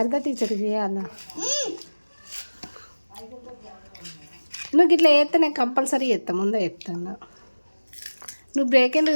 టీచర్కి చేయాలా? నువ్వు ఇట్లా చేస్తే నేను కంపల్సరీ చేస్తా, ముందే చెప్తాను. నువ్వు బ్రేక్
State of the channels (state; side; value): inverted; both; correlation -1.00